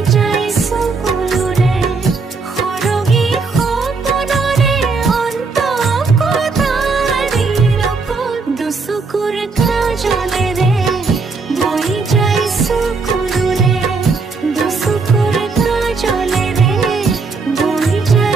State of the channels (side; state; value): left; quieter; 4.4 dB